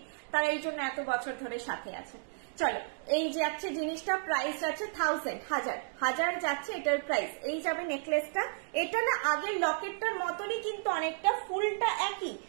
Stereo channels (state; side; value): silent; left; digital silence